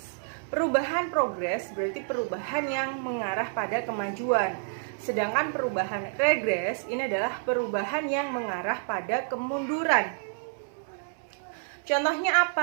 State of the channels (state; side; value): silent; left; 59 dB below the other